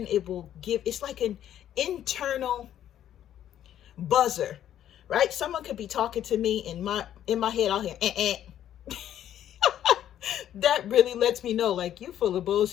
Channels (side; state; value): right; quieter; 11.0 dB